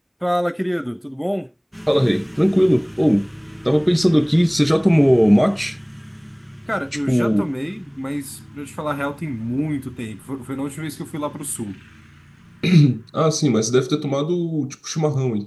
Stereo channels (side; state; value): both; identical; correlation 1.00